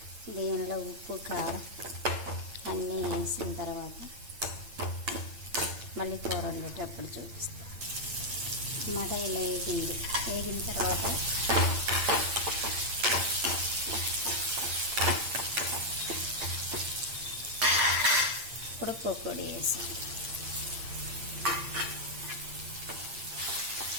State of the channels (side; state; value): left; late; 8.7 ms